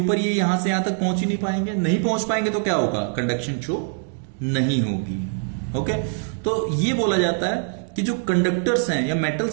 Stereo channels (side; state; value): left; silent; 63 dB below the other